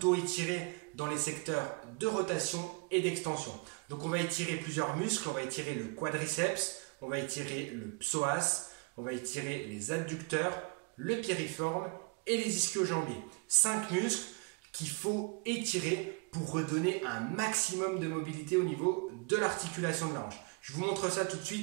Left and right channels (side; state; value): left; quieter; 30.2 dB